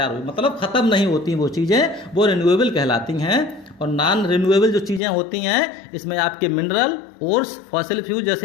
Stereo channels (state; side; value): drops out; right; at 5.0 s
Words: हुई, मतलब ख़त्म नहीं होती वो चीज़ें, वो रिन्यूएबल कहलाती हैं। और नॉन रिन्यूएबल जो चीज़ें होती हैं, इसमें आपके मिनरल, ओर्स, फॉसिल फ्यूल